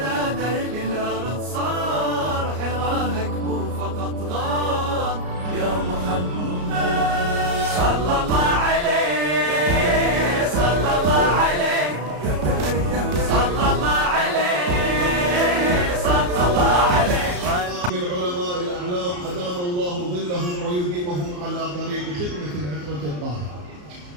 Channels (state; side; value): late; left; 34 ms